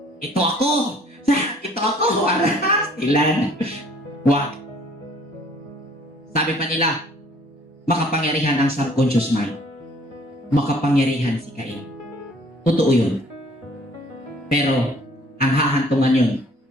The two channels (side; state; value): both; normal; correlation 0.57